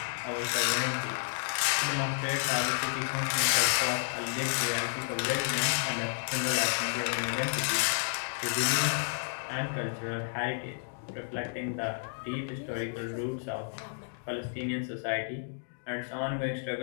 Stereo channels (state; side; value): silent; right; digital silence